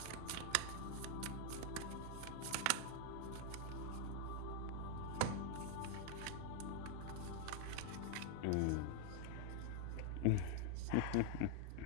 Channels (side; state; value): both; different; correlation 0.00